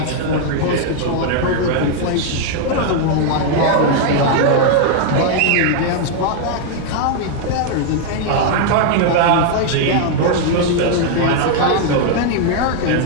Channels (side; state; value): both; different; correlation 0.00